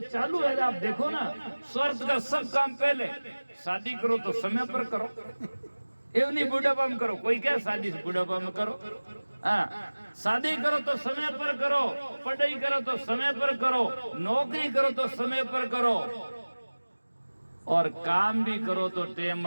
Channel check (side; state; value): both; inverted; correlation -1.00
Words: चालू है, आप देखो ना, स्वार्थ का सब काम पहले, शादी करो तो समय पर करो, एवं नहीं बुढ़ापा में करो। कोई क्या शादी बुढ़ापा में करो, हाँ, शादी करो तो समय पर करो, पढ़ाई करो तो समय पर करो, नौकरी करो तो समय पर करो, और काम भी करो तो टेम